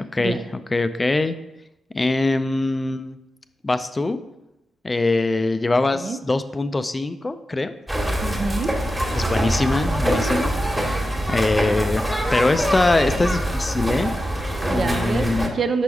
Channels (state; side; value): normal; both; correlation 0.92